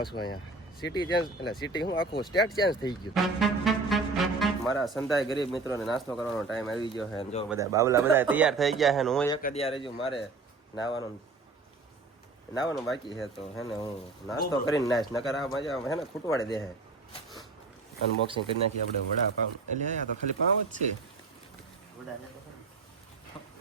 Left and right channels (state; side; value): quieter; left; 3.8 dB